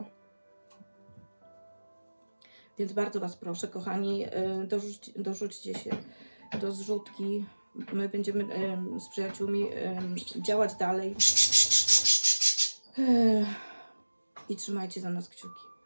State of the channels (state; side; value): inverted; both; correlation -1.00